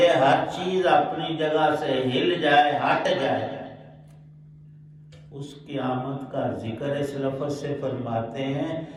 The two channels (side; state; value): both; identical; correlation 1.00